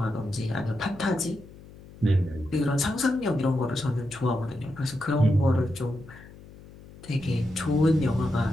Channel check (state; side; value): noise; left; hum, 20 dB below the sound